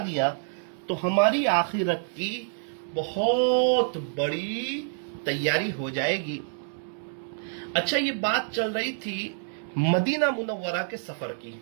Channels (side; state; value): left; silent; digital silence